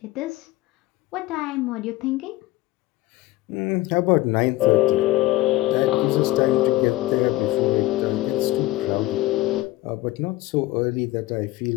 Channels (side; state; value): right; quieter; 17.7 dB